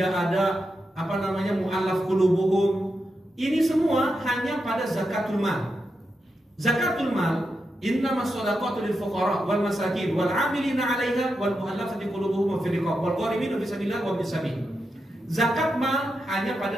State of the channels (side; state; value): both; normal; correlation 0.87